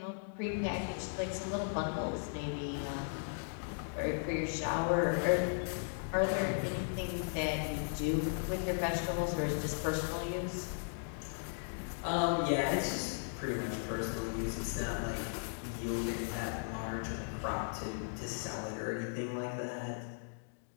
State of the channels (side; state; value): right; silent; digital silence